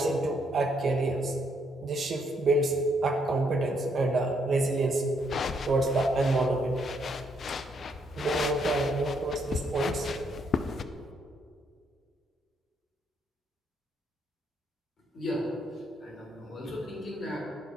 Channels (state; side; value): normal; both; correlation 0.73